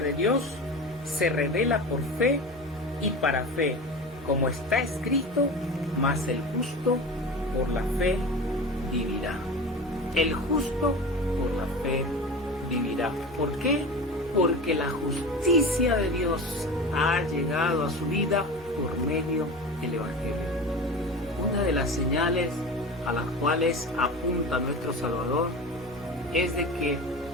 Dios se revela por fe y para fe, como está escrito, mas el justo por la fe vivirá. El justo por la fe vivirá. ¿Por qué? Porque la justicia de Dios ha llegado a su vida por medio del Evangelio. Una de las señales a las cuales apunta nuestro Salvador es de que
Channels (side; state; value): both; normal; correlation 0.31